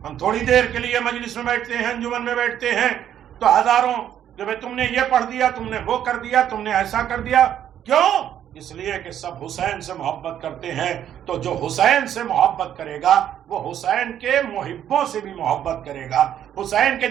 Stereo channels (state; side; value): quieter; left; 10.3 dB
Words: ہم تھوڑی دیر کے لیے مجلس میں بیٹھتے ہیں، انجمن میں بیٹھتے ہیں تو ہزاروں کہ بھئی تم نے یہ پڑھ دیا، تم نے وہ کر دیا، تم نے ایسا کر دیا. کیوں؟ اس لیے کہ سب حسین سے محبت کرتے ہیں. تو جو حسین سے محبت کرے گا وہ حسین کے محبوں سے بھی محبت کرے گا، حسین کے